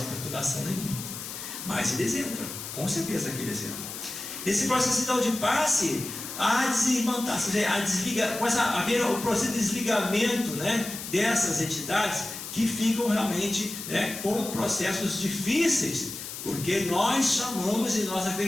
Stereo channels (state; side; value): noise; left; hiss, 9 dB below the sound